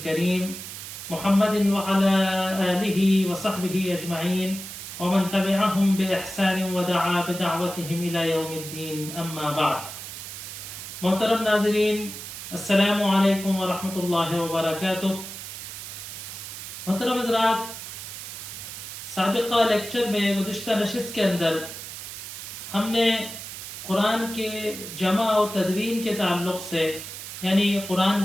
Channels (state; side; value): noise; right; hiss, 10 dB below the sound